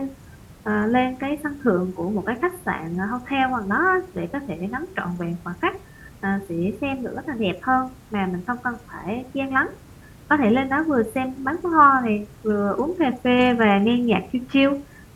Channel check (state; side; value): identical; both; correlation 1.00